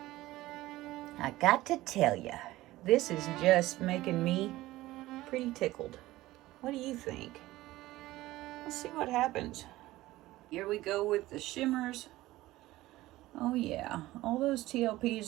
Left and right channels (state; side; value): quieter; left; 17.1 dB